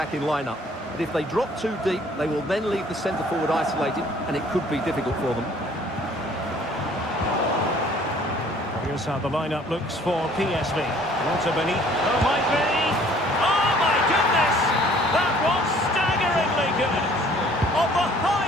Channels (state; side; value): normal; both; correlation 0.56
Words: lineup. But if they drop too deep, they will then leave the centre forward isolated, and it could be difficult for them. Here's how the lineup looks for PSV. Lots of beneath. Oh, might be. Oh, my goodness! That was staggeringly good. Of the